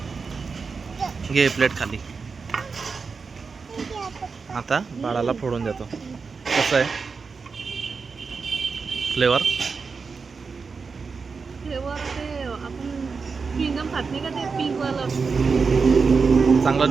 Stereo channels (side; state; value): left; quieter; 5.0 dB